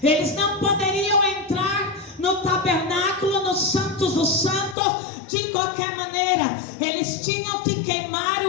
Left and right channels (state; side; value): drops out; right; at 4.8 s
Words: Eles não poderiam entrar no tabernáculo, no Santos dos Santos, de qualquer maneira. Eles tinham que queimar